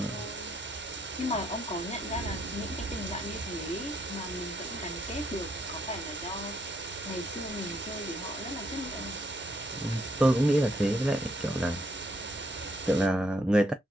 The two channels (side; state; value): both; normal; correlation 0.73